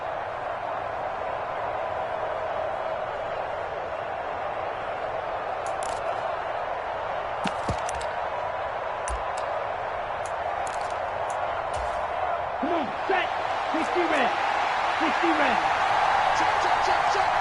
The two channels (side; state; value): both; identical; correlation 1.00